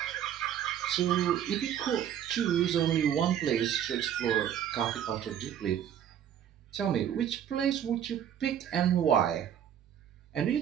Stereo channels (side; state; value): left; quieter; 9.6 dB